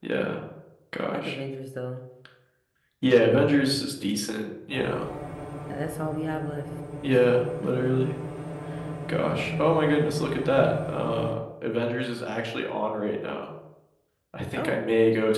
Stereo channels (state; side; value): identical; both; correlation 1.00